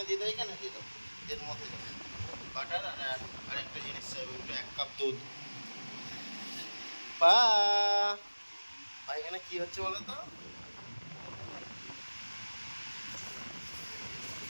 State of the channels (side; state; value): both; inverted; correlation -1.00